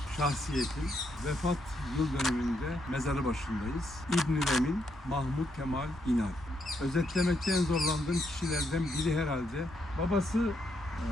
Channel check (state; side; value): normal; both; correlation 0.77